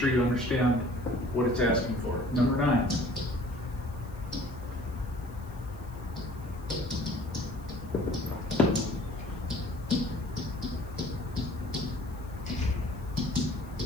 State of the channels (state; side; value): noise; left; hiss, 26 dB below the sound